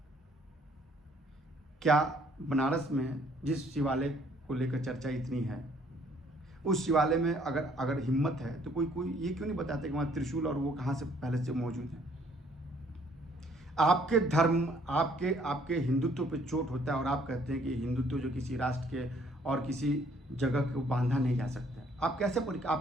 क्या बनारस में जिस शिवालय को लेकर चर्चा इतनी है उस शिवालय में अगर अगर हिम्मत है तो कोई ये क्यों नहीं बताते कि वहाँ त्रिशूल और वो कहाँ से पहले से मौजूद है। आपके धर्म, आपके आपके हिंदुत्व पे चोट होता है और आप कहते हैं कि हिंदुत्व जो किसी राष्ट्र के और किसी जगह को बांधा नहीं जा सकता। आप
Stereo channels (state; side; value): normal; both; correlation 0.63